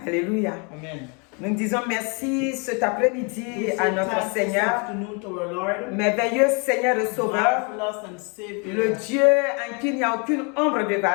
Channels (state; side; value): quieter; right; 34.3 dB